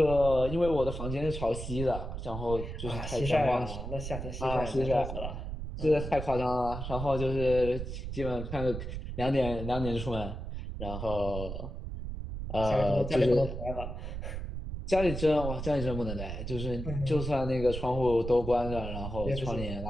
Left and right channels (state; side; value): noise; right; rumble, 6 dB below the sound